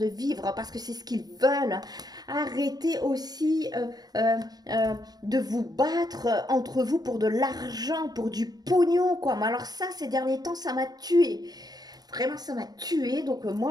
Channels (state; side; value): late; left; 0.19 ms